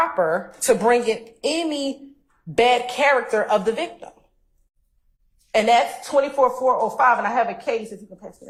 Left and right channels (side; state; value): both; identical; correlation 1.00